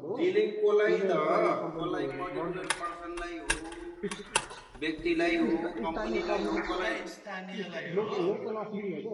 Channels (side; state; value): both; identical; correlation 1.00